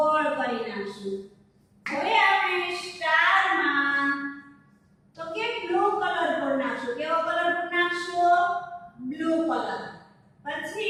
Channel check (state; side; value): identical; both; correlation 1.00